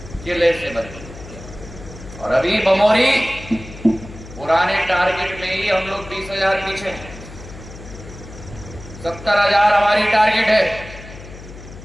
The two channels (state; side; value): noise; left; hum, 15 dB below the sound